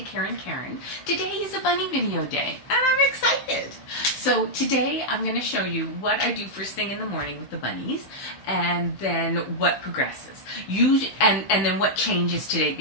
Karen. Today is a bunny video day, and I'm excited. So today, I'm going to show you what I do first thing in the morning with the bunnies, and then what progresses. And then what changes today,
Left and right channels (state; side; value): late; right; 15 ms